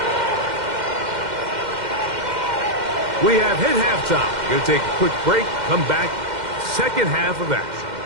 We have hit halftime. Going to take a quick break, come back, second half of action.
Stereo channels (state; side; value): late; left; 2.1 ms